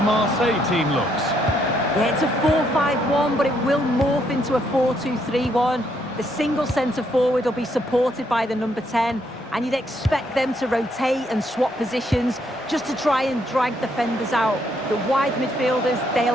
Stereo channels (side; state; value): both; normal; correlation 0.73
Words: Marseille team looks. Yeah, it's a 4-5-1, but it will morph into a 4-2-3-1. The single centre-forward will be supported by the number 10, and you'd expect them to rotate and swap positions just to try and drag defenders out. The wide midfielders,